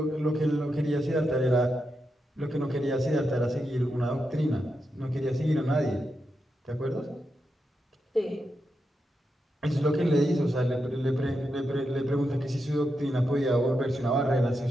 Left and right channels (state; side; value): normal; both; correlation 0.86